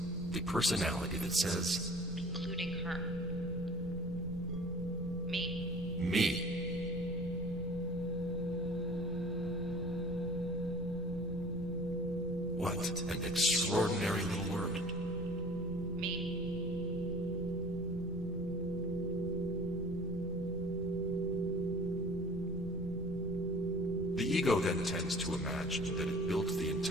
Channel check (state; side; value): noise; right; rumble, 11 dB below the sound